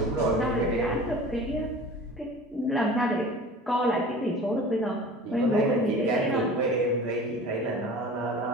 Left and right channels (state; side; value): normal; both; correlation 0.41